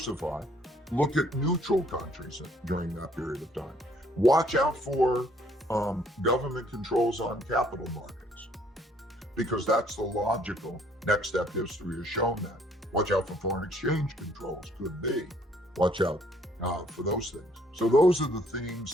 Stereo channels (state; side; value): normal; both; correlation 0.63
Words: Look at neutral countries during that period of time. Watch out for government controls on capital markets, because that's the logical next step. History has shown that. Watch out for foreign exchange controls, could be. Watch out for those things. So those are the